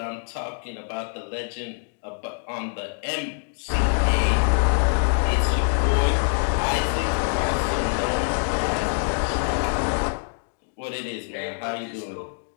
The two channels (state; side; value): silent; right; 62 dB below the other